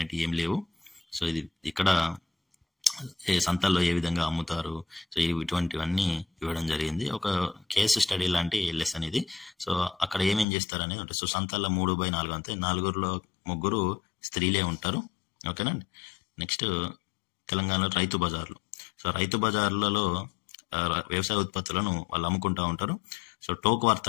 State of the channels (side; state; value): right; drops out; at 10.5 s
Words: ఏం లేవు. సో ఇది ఇక్కడ సంతల్లో ఏ విధంగా అమ్ముతారు, సో ఇటువంటివన్నీ ఇవ్వడం జరిగింది. ఒక కేసు స్టడీ లాంటి లెసన్ ఇది. సో అక్కడ ఏమేం చేస్తారు అనేది ఉంటుంది. సో సంతల్లో 3/4 అంతే, 4లో 3 స్త్రీలే ఉంటారు. ఓకేనండి. నెక్స్ట్ తెలంగాణలో రైతు బజార్లు. సో రైతు బజార్లలో వ్యవసాయ ఉత్పత్తులను వాళ్ళు అమ్ముకుంటూ ఉంటారు. సో టోకు